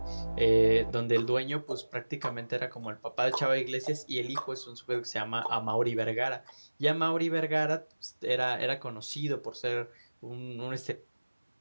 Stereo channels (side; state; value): both; inverted; correlation -1.00